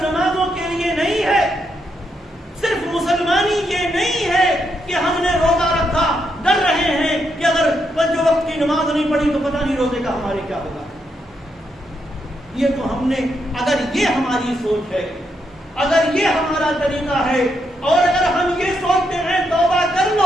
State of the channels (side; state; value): both; normal; correlation 0.80